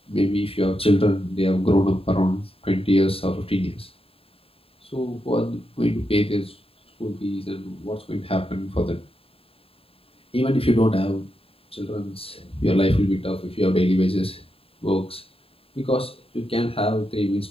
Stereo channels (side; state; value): right; late; 0.27 ms